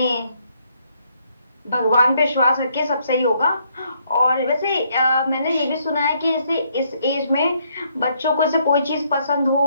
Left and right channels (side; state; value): both; inverted; correlation -0.71